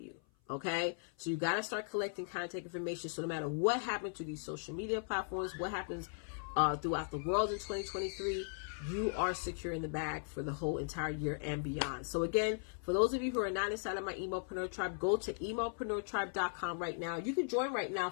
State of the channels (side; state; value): right; silent; 53 dB below the other